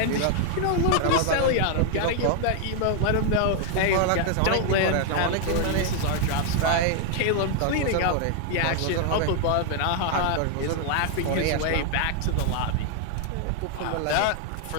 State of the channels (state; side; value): different; both; correlation 0.00